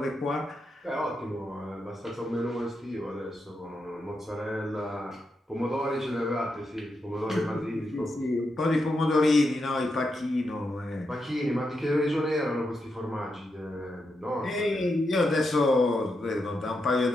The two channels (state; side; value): normal; both; correlation 0.85